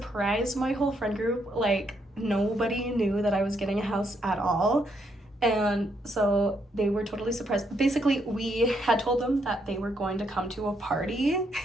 my whole friend group. Like, nobody knew that I was getting a house at all. And so they were totally surprised. Basically, we had told them that they were going to come to a party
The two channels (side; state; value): both; normal; correlation 0.75